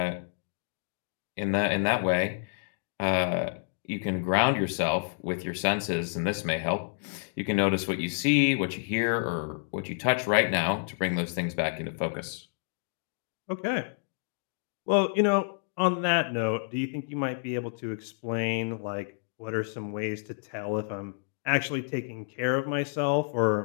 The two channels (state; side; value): silent; right; digital silence